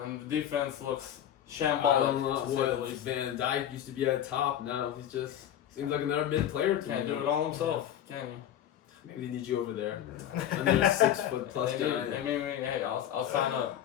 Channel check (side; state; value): right; quieter; 10.8 dB